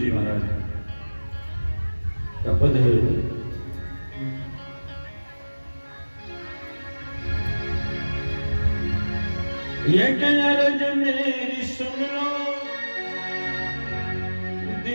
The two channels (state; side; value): inverted; both; correlation -1.00